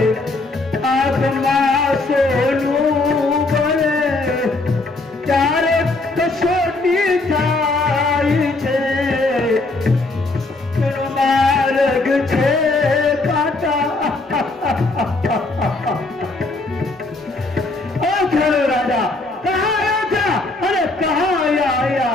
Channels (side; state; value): right; quieter; 3.2 dB